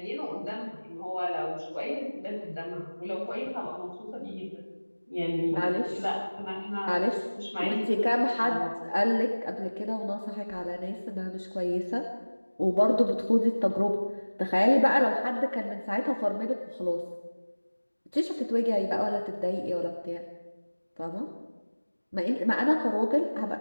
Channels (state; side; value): inverted; both; correlation -1.00